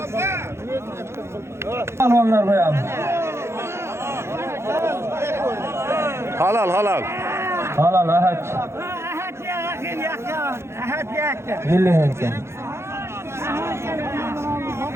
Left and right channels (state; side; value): late; left; 0.13 ms